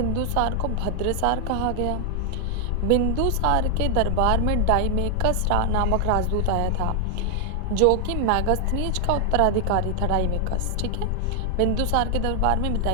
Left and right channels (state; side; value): different; both; correlation 0.00